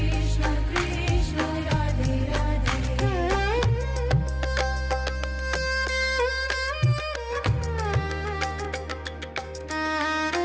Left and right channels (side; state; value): both; identical; correlation 1.00